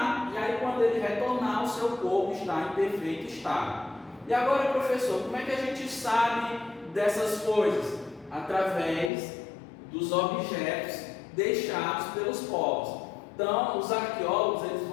E aí, quando ele retornar, o seu corpo está em perfeito estado. E agora, professor, como é que a gente sabe dessas coisas? Através dos objetos deixados pelos povos. Então, os arqueólogos eles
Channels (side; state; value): right; drops out; at 9.1 s